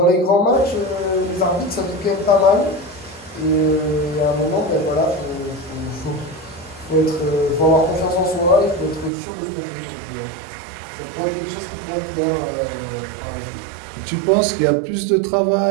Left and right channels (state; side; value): drops out; left; at 9.1 s